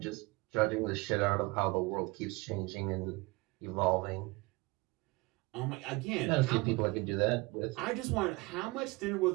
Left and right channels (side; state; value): left; quieter; 24.1 dB